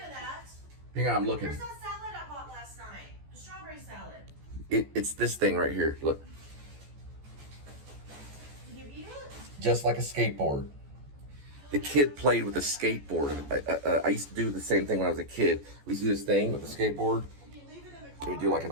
of that. Hang on, I'm looking. Where's that salad I bought last night? The strawberry salad. It's this thing right here. Look. Did you eat it? Just like a skateboard. The kid played with a skateboard. I used to do the same thing when I was a kid. We used to do this thing with the skateboard. Did you leave it in the We car? would do like an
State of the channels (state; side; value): late; left; 14 ms